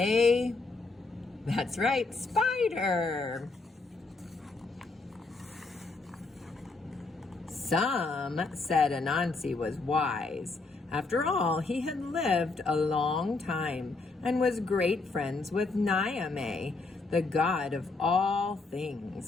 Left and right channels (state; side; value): quieter; right; 3.7 dB